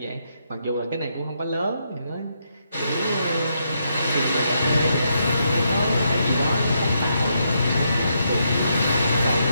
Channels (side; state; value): both; inverted; correlation -0.79